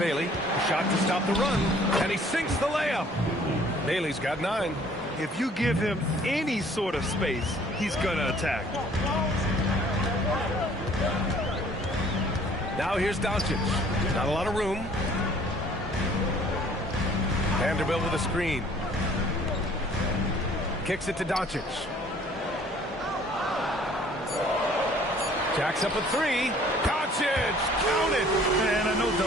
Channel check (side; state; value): both; normal; correlation 0.56